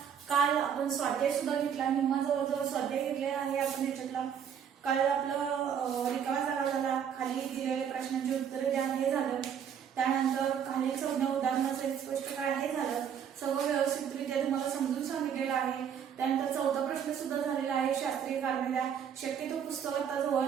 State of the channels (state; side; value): quieter; left; 8.2 dB